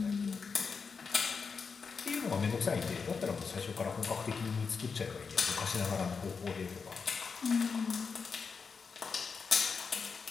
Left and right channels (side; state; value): right; quieter; 5.4 dB